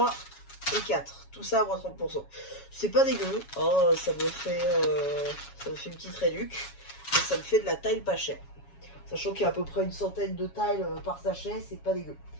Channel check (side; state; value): right; late; 7.2 ms